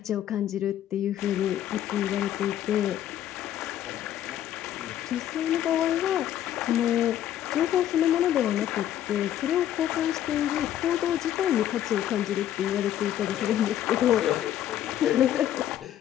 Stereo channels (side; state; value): right; quieter; 11.5 dB